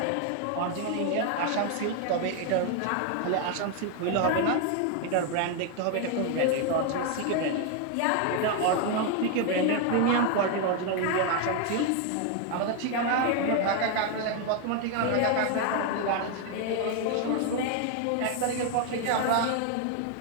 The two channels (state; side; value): different; both; correlation 0.01